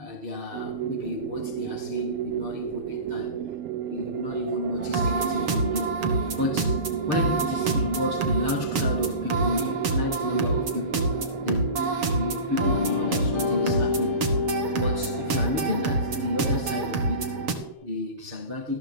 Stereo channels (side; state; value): left; late; 7.3 ms